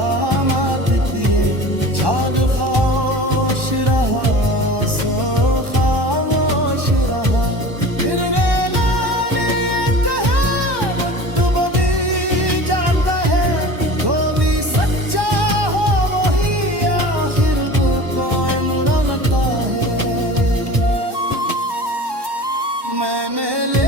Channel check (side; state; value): left; late; 1.1 ms